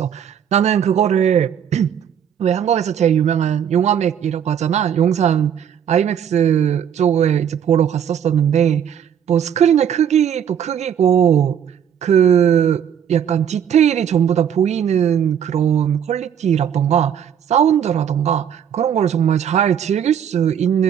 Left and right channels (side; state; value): left; quieter; 8.7 dB